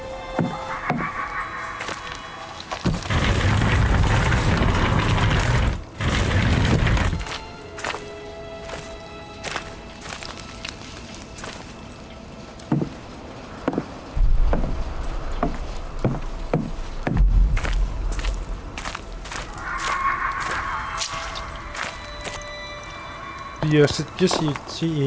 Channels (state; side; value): identical; both; correlation 1.00